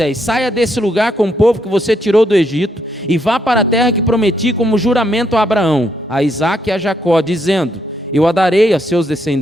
saia desse lugar com o povo que você tirou do Egito, e vá para a terra que prometi como juramento a Abraão, a Isaque e a Jacó, dizendo: eu a darei a seus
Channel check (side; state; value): both; normal; correlation 0.76